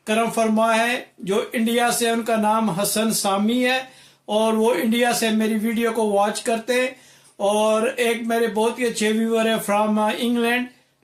करम फरमा है जो इंडिया से, उनका नाम हसन सामी है और वो इंडिया से मेरी वीडियो को वॉच करते हैं। और एक मेरे बहुत ही अच्छे व्यूअर है फ्रॉम इंग्लैंड,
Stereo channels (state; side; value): identical; both; correlation 1.00